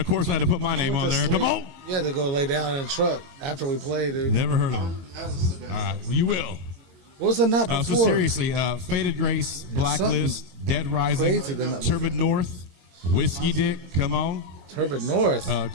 course, I had to put my name on there. Come on. You had to go lay down in the truck after we played. Never heard of them. All right. Well, you will. What's the number? So seriously, Faded Grace, Blacklist, Dead Rising, Turbid North, Whiskey Dick, come on. Turbid North.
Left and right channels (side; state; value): left; late; 22 ms